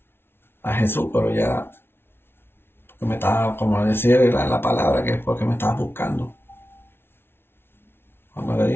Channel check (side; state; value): right; late; 0.11 ms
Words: a Jesús, pero ya porque me estaba, como decir la palabra, que es porque me estaba buscando. Cuando le